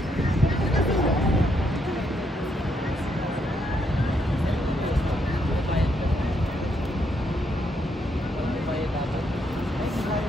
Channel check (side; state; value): both; normal; correlation 0.76